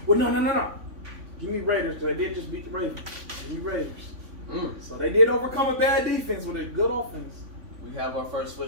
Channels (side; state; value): left; late; 3.5 ms